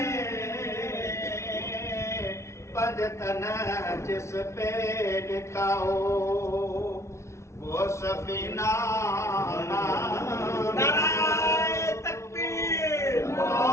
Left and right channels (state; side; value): late; right; 0.13 ms